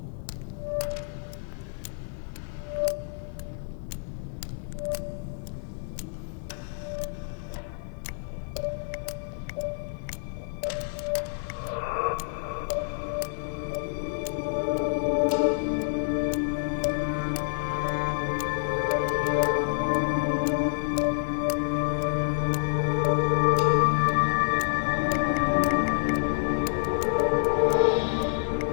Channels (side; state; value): right; silent; 59 dB below the other